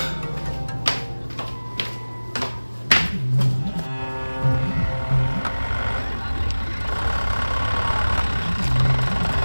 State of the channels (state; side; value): inverted; both; correlation -1.00